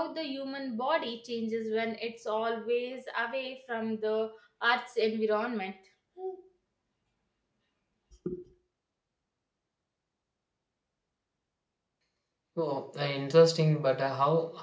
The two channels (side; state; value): both; identical; correlation 1.00